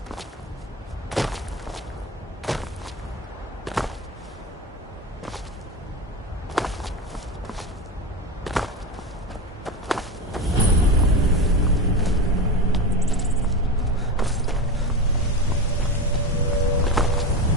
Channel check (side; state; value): both; normal; correlation 0.21